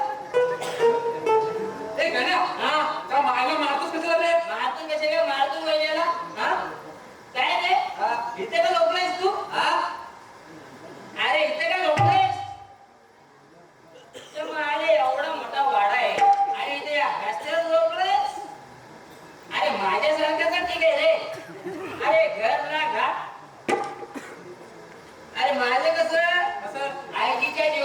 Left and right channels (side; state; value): both; identical; correlation 1.00